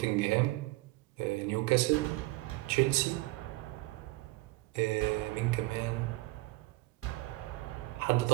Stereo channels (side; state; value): left; quieter; 20.6 dB